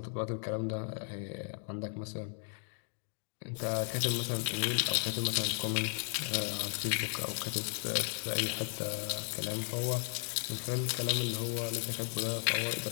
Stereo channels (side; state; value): right; silent; 54 dB below the other